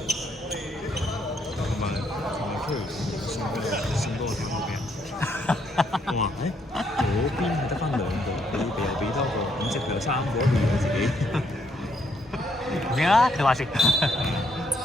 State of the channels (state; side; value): normal; both; correlation 0.73